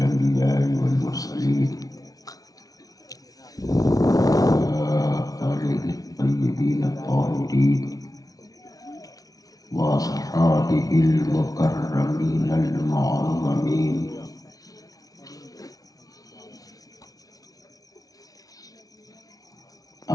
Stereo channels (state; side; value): late; right; 0.18 ms